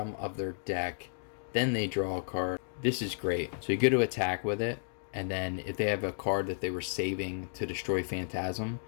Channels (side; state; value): right; silent; digital silence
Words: of their deck. Then they draw a card. This is great. So you go to attack with it, and then if they have a card that they were saving to destroy Phantasm,